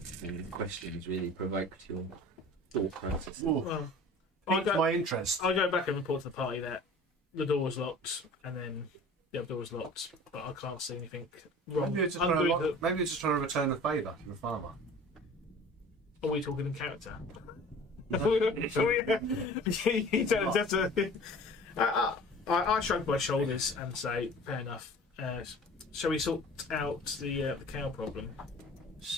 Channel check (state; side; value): normal; both; correlation 0.43